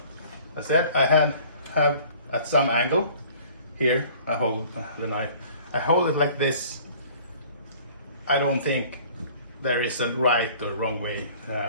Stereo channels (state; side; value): inverted; both; correlation -0.50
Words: As I said, I have at some angle here, I hold the knife. I hold it like this. I don't think there is a right or wrong way